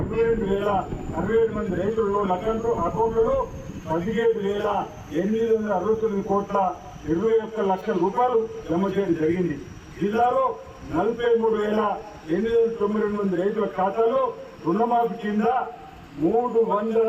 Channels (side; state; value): both; identical; correlation 1.00